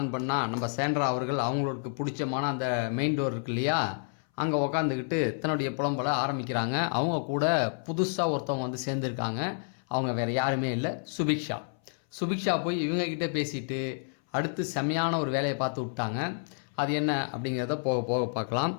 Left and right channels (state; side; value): silent; right; 58 dB below the other